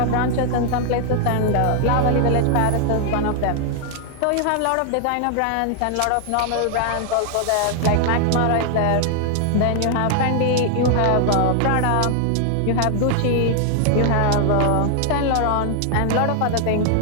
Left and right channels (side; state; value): both; different; correlation 0.00